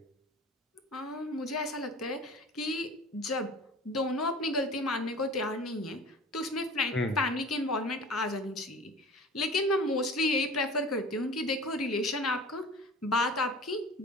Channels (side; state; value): both; normal; correlation 0.40